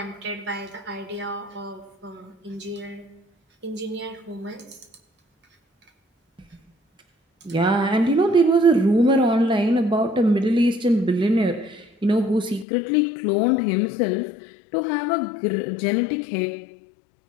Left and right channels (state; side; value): drops out; right; at 12.7 s